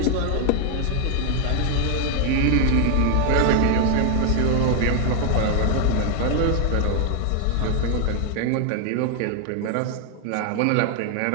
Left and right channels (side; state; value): both; different; correlation 0.00